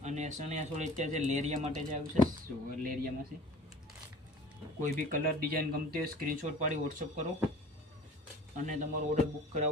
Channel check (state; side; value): normal; both; correlation 0.44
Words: અને સણિયા ચોળી અત્યારે જે લેરિયા માટે જે આવ્યું છે, લેરિયામાં છે। કોઈ બી કલર ડિઝાઇન ગમતી હોય સ્ક્રીનશોટ પાડી વોટ્સઅપ કરો અને તમારો ઓર્ડર બુક